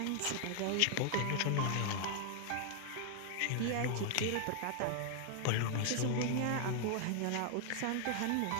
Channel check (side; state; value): both; different; correlation 0.00